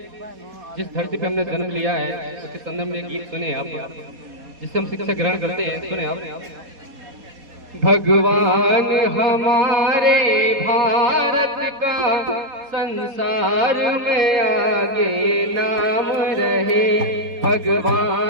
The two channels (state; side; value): late; left; 4.2 ms